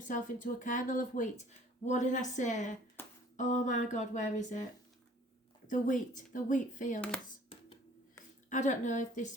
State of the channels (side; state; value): both; normal; correlation 0.53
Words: into a kernel of wheat. What did I say? Oh my God, where is it? The wheat fields. I don't know